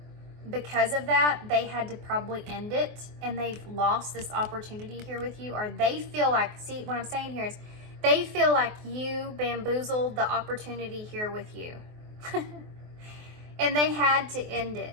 because of that, they had to probably end it, and they've lost this opportunity here with you, or they feel like, see, what I'm saying here is, they feel like you bamboozled the opportunity here with you. And they had to end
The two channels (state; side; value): late; left; 24 ms